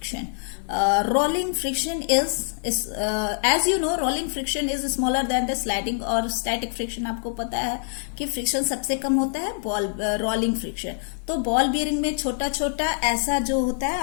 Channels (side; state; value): right; silent; digital silence